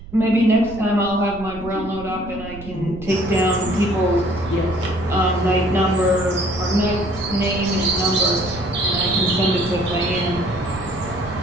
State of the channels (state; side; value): noise; right; rumble, 15 dB below the sound